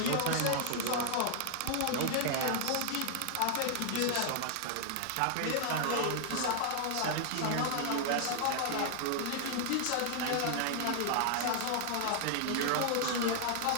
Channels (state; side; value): different; both; correlation 0.00